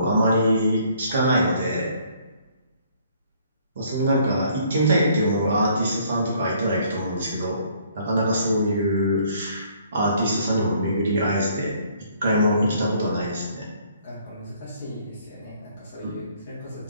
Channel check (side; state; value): both; inverted; correlation -0.62